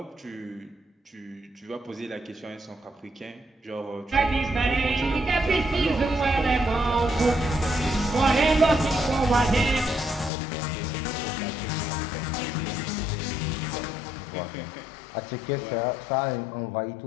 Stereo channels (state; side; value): drops out; right; at 10.3 s